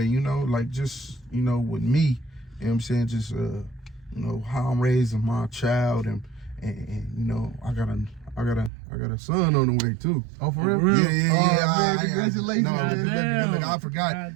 know, like just, you know, with me, you know what I'm saying, just you know, how I'm raising my child and you know, I got a son on the way too. Oh, for real? Yeah. Congratulations. Look, I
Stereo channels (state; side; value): drops out; left; at 8.7 s